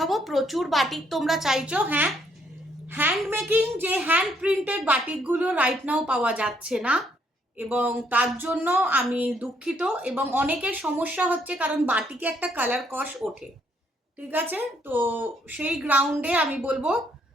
প্রচুর বাটিক তোমরা চাইছো, হ্যাঁ, হ্যান্ড মেকিং যে হ্যান্ড প্রিন্টেড বাটিকগুলো রাইট নাও পাওয়া যাচ্ছে না, এবং তার জন্য আমি দুঃখিত। এবং অনেকের সমস্যা হচ্ছে কারণ বাটিকে একটা কালার কস ওঠে, ঠিক আছে? তো সেই গ্রাউন্ডে আমি বলবো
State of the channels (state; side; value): normal; both; correlation 0.70